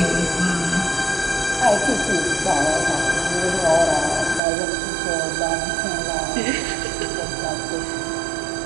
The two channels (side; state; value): left; drops out; at 4.4 s